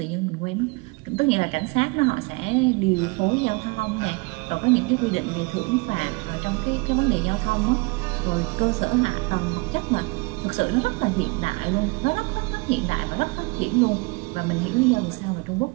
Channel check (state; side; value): quieter; left; 27.9 dB